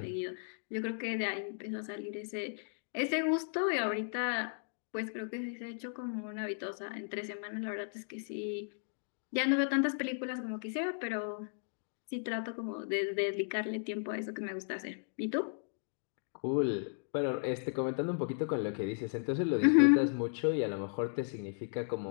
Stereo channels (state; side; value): silent; right; digital silence